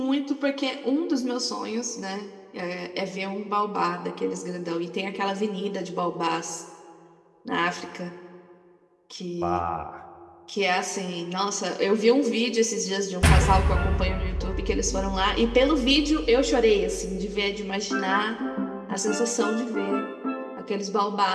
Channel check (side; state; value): both; identical; correlation 1.00